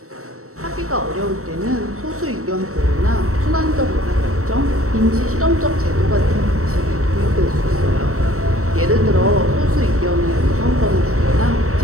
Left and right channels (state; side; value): late; left; 0.64 ms